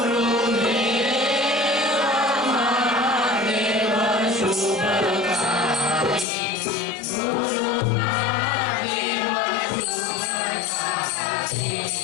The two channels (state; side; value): drops out; right; at 6.2 s